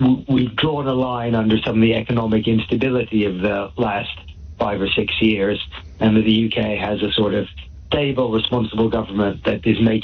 we've drawn a line under some of the economic instability of the last 5 or 6 years, and that the UK has a sort of stable, responsible government that is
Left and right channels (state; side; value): identical; both; correlation 1.00